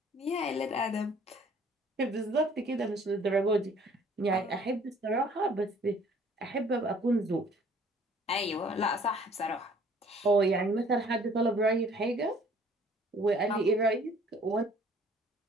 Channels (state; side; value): normal; both; correlation 0.55